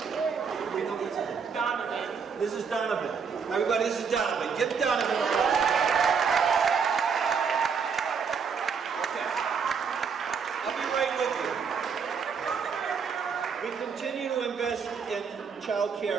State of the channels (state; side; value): quieter; left; 6.0 dB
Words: we know what's his name? Donovan. This is Donovan. Everybody, this is Donovan. Give Donovan a applause. Okay. I'll be right with you. We continue to invest in child